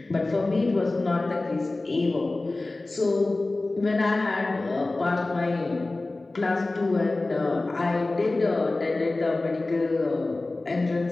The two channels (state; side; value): quieter; right; 3.1 dB